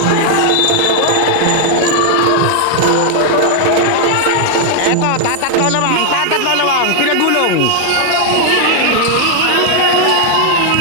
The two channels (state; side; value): different; both; correlation 0.00